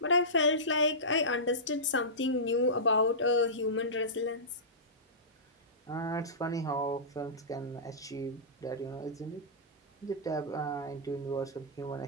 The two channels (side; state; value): both; normal; correlation -0.19